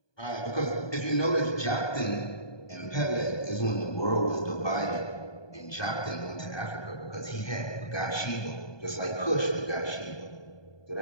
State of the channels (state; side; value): late; right; 1.2 ms